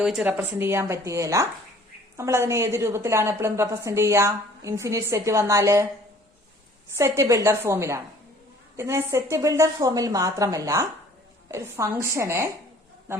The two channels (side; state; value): both; normal; correlation 0.54